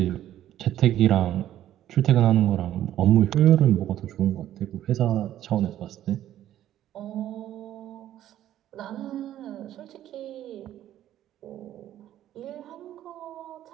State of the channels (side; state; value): left; quieter; 12.3 dB